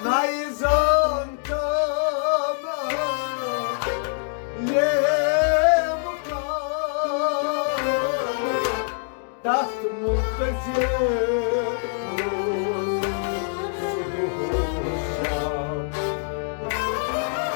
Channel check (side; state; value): right; silent; digital silence